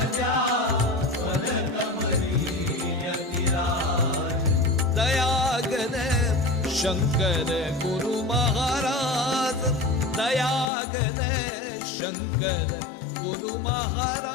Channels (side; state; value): right; drops out; at 10.7 s